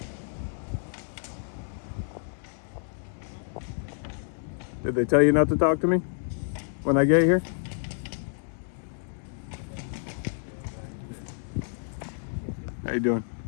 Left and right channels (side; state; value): right; silent; digital silence